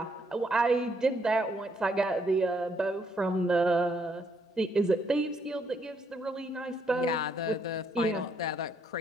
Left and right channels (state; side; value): normal; both; correlation 0.72